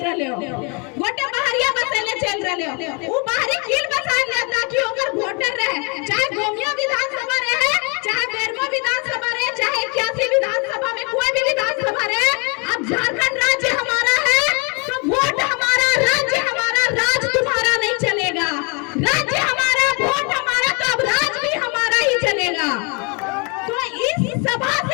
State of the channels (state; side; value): quieter; right; 33.0 dB